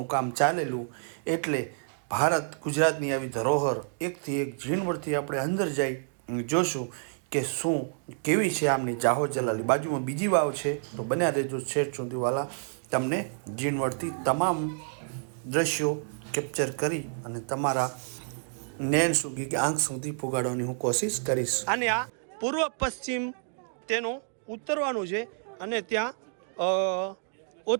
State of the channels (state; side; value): silent; left; digital silence